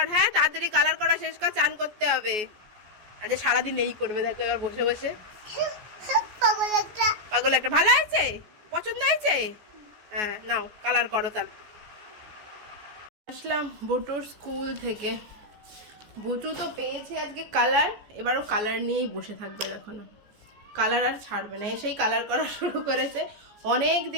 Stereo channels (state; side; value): late; left; 14 ms